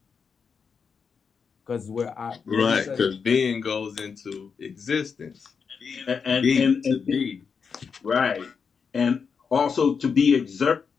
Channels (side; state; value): right; quieter; 5.9 dB